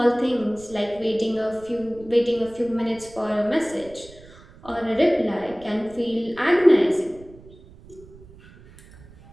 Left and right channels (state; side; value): noise; right; rumble, 22 dB below the sound